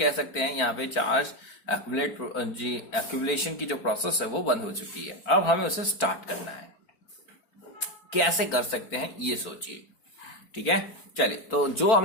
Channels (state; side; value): late; right; 4.5 ms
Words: सकते हैं, यहाँ पे चार्ज एक्यूमुलेशन की जो प्रोसेस है वो बंद हो चुकी है। अब हमें उसे स्टार्ट करना है, कैसे कर सकते हैं ये सोचिए, ठीक है। चलिए, तो जो